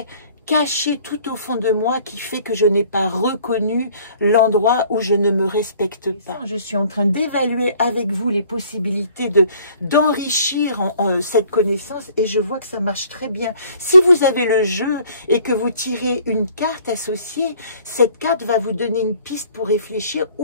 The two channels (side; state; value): both; inverted; correlation -0.55